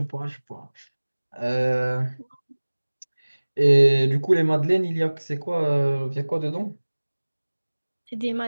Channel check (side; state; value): both; inverted; correlation -1.00